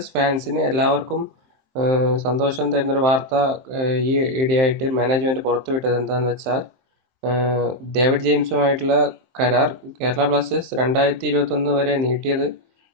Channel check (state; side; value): late; left; 23 ms